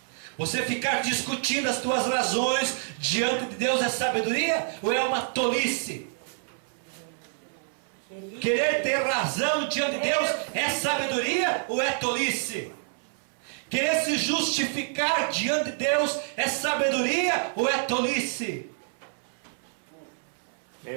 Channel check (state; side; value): silent; left; 60 dB below the other